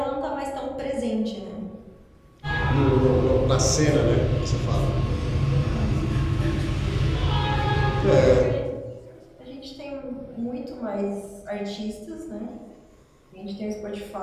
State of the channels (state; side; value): identical; both; correlation 1.00